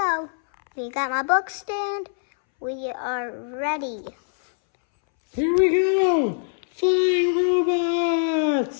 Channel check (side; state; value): right; silent; 63 dB below the other